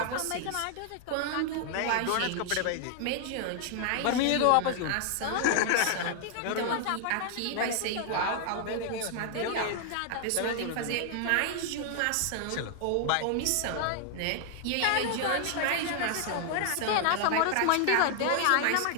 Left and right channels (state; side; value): different; both; correlation 0.00